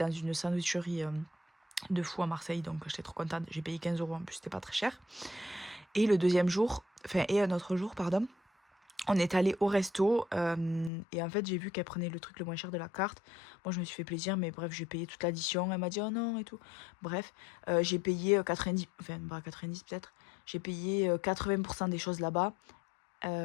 une sandwicherie de fou à Marseille. Donc j'étais trop contente. J'ai payé 15 € en plus, c'était pas très cher. Et le deuxième jour, enfin et un autre jour, pardon. On est allé au resto et en fait j'ai vu qu'elle prenait le truc le moins cher de la carte. Moi je me suis fait plaisir mais bref j'ai payé toute l'addition. Elle m'a dit oh non et tout. Bref j'ai payé 90, enfin pas 90 peut-être. J'ai payé 80% des choses là-bas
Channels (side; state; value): right; drops out; at 10.9 s